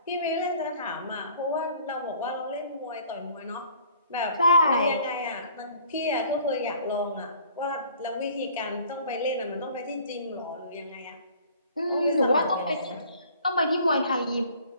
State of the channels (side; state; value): both; inverted; correlation -0.53